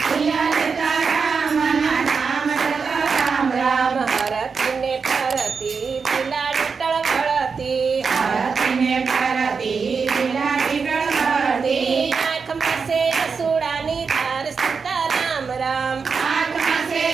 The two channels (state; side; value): quieter; left; 5.4 dB